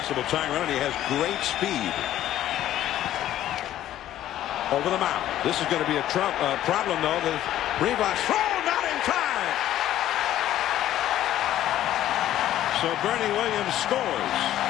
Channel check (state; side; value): quieter; right; 12.7 dB